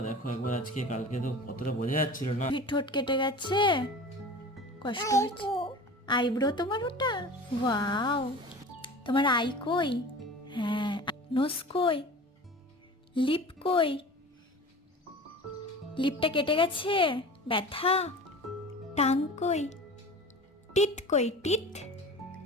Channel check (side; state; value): both; normal; correlation 0.37